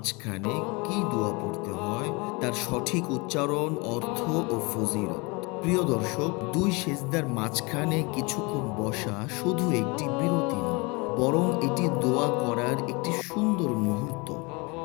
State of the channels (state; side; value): quieter; right; 27.6 dB